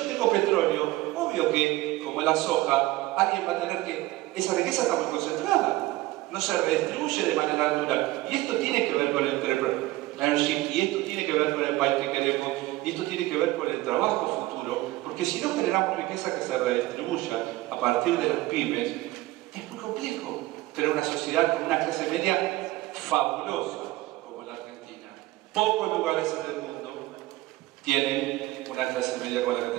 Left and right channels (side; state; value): left; quieter; 18.3 dB